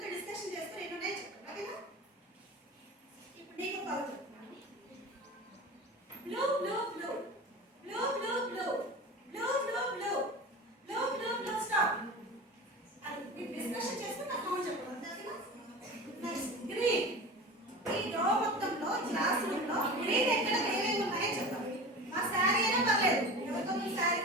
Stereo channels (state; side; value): normal; both; correlation 0.33